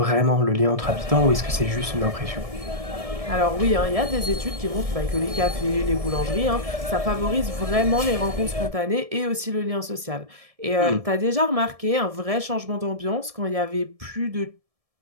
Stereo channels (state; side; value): late; left; 1.7 ms